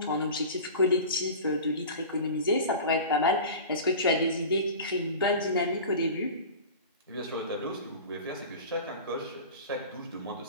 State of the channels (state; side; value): inverted; both; correlation -0.34